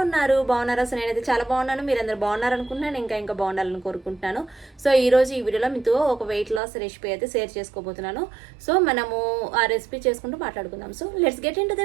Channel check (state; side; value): drops out; left; at 6.6 s